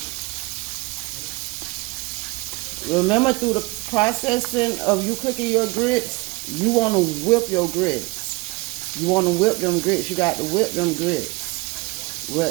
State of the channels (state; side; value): quieter; left; 24.6 dB